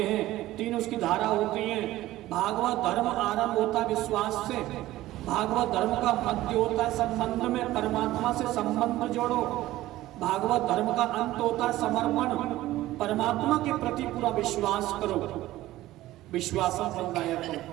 हैं, तीन उसकी धारा होती हैं। भागवत धर्म आरंभ होता है विश्वास से, भागवत धर्म का मध्य होता है संबंध में, परमात्मा से संबंध जोड़ो। भागवत धर्म का अंत होता है समर्पण, परमात्मा के प्रति पूरा विश्वास करो, विश्वासम फलदायक।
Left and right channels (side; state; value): left; quieter; 15.9 dB